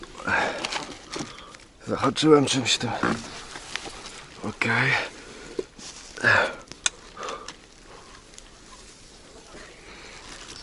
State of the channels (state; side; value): identical; both; correlation 1.00